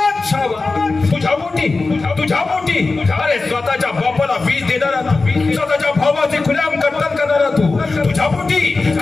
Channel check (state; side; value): quieter; right; 3.7 dB